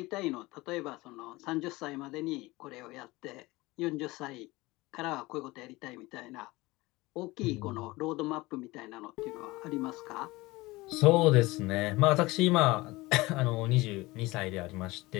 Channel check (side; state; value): right; quieter; 21.0 dB